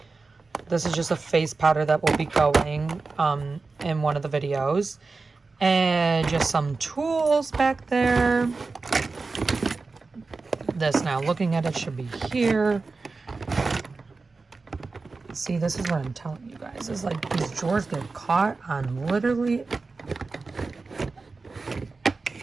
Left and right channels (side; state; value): left; quieter; 4.0 dB